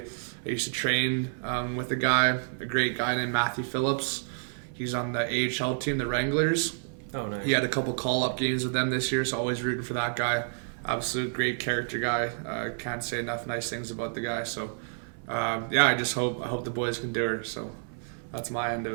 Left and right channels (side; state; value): left; silent; 58 dB below the other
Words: used to train with a great guy named Matthew Phillips. He's on the AHL team, the Wranglers. Oh, nice. He had a couple call-up games with them this year, so always rooting for that guy. Absolute great character guy. Can't say enough nice things about the guy. So, I hope the boys can do her. So, that's my end of